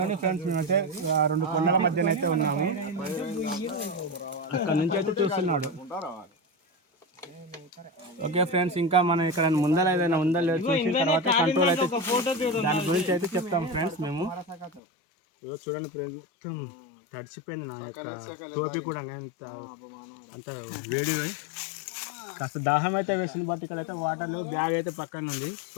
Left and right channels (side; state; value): right; drops out; at 14.8 s